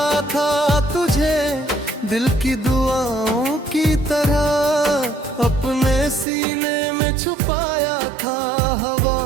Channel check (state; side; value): drops out; left; at 6.2 s